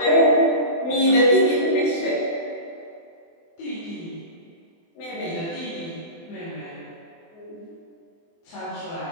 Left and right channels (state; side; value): late; right; 24 ms